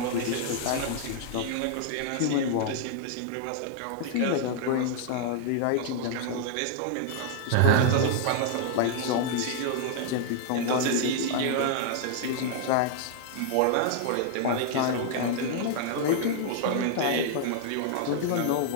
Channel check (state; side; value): different; both; correlation 0.00